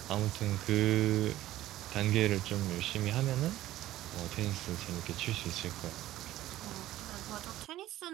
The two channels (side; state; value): left; quieter; 14.7 dB